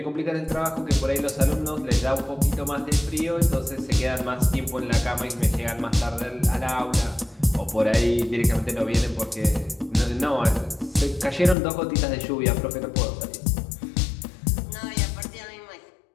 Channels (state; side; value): drops out; right; at 11.6 s